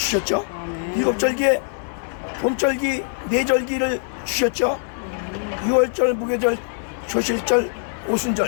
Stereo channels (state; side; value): silent; right; 63 dB below the other